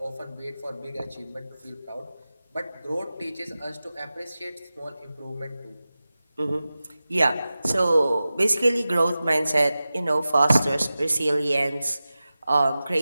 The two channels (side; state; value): both; inverted; correlation -0.95